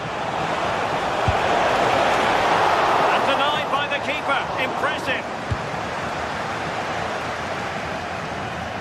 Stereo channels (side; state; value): both; identical; correlation 1.00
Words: And denied by the keeper. Impressive.